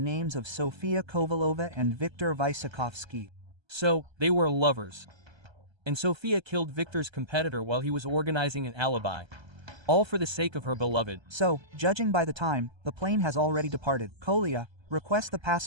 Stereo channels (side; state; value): left; late; 1.3 ms